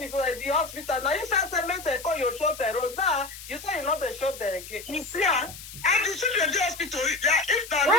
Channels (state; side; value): noise; left; hiss, 14 dB below the sound